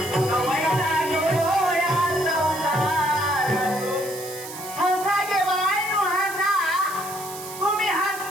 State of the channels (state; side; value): noise; right; hiss, 12 dB below the sound